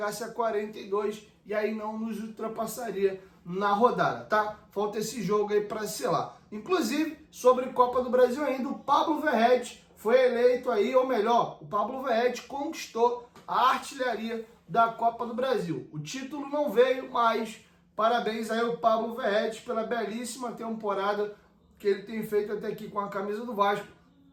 a 42 e aí não nos ultrapassaria na rodada, tá? Falta esse jogo aí para selar. Inclusive, sobre Copa do Brasil ainda, o Pablo Verratti foi eleito aí, ou melhor, o Pablo Verratti conquistou a artilharia da Copa do Brasil. O título não veio, mas parabéns aí ao Pablo Verratti pela belíssima temporada que ele tem feito até aqui com a camisa do Vasco.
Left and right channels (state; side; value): identical; both; correlation 1.00